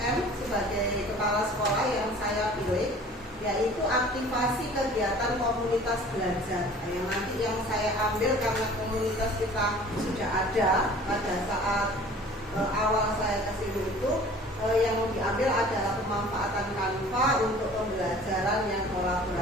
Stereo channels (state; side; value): normal; both; correlation 0.47